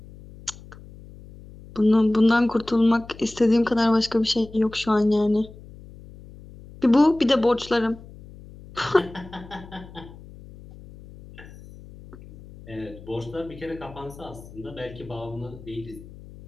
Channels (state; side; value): noise; left; hum, 19 dB below the sound